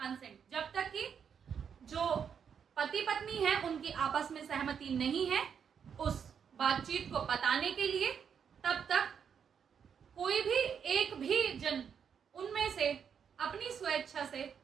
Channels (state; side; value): quieter; left; 7.3 dB